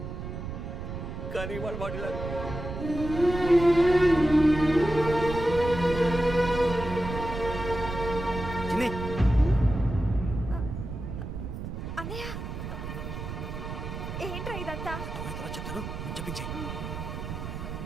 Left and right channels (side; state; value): right; noise; rumble, 7 dB below the sound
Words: కానీ వాడు వాడిలా అన్నయ్య, ఏంట్రా ఇదంతా? చెప్తాను, చెప్పించే.